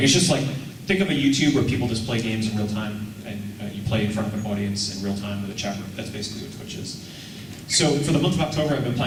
it's just like, think of a YouTube where people just play games in real time, and you play in front of an audience in real time with a chat room. That's basically what Twitch is. So for the month of October, I've been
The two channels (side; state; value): both; identical; correlation 1.00